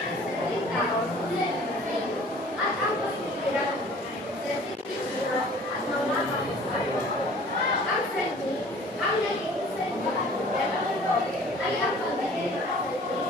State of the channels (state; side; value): normal; both; correlation 0.49